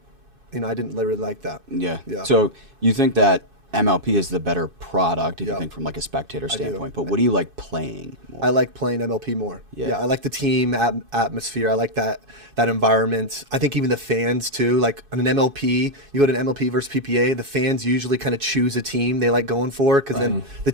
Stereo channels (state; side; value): late; left; 2.5 ms